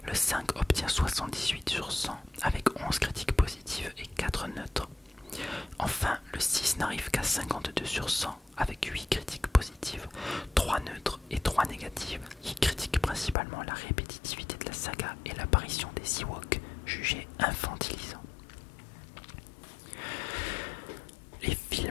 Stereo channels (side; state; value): right; drops out; at 13.4 s